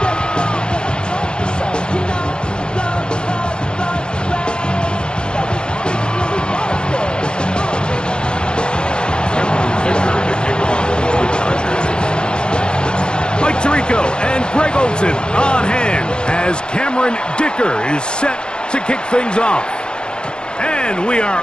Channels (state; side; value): late; right; 0.050 ms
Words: Tirico and Greg Olsen on hand as Cameron Dicker is set to kick things off. And we are